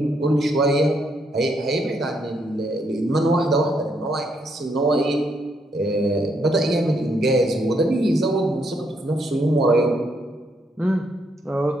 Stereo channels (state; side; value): normal; both; correlation 0.75